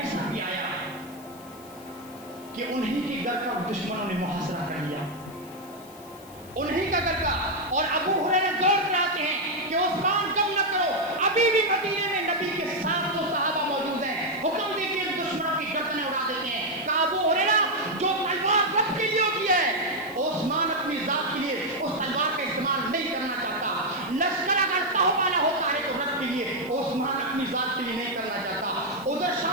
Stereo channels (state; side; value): noise; left; hiss, 22 dB below the sound